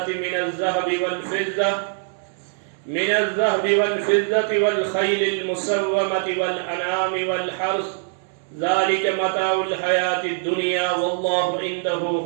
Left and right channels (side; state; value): left; silent; 63 dB below the other